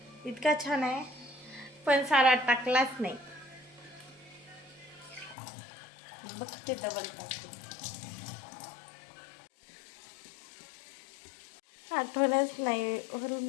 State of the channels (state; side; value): drops out; right; at 5.4 s